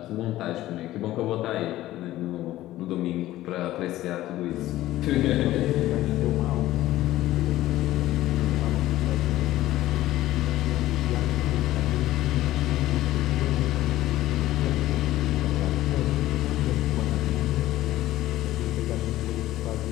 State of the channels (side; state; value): right; quieter; 15.2 dB